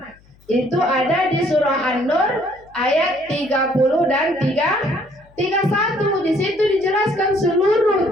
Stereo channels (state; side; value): noise; left; hum, 29 dB below the sound